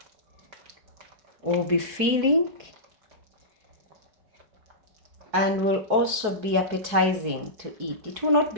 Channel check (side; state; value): left; late; 4.7 ms